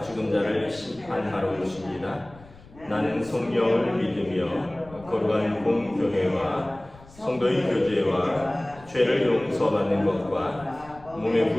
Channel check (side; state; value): left; noise; rumble, 22 dB below the sound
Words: 죽은 자를 심판하러 오십니다. 나는 성령을 믿으며 거룩한 공교회와 성도의 교제와 죄를 용서받는 것과 몸의